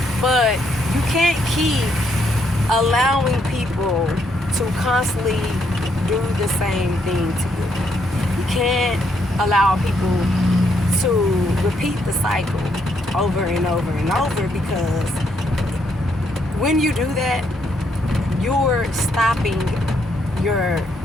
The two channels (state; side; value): normal; both; correlation 0.74